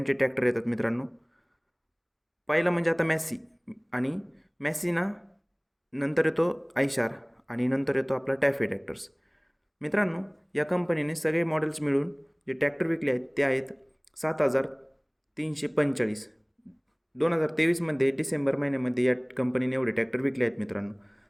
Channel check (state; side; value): identical; both; correlation 1.00